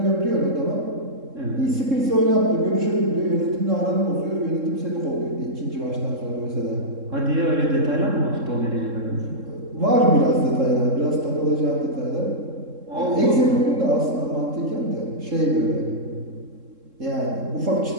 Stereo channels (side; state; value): left; late; 3.7 ms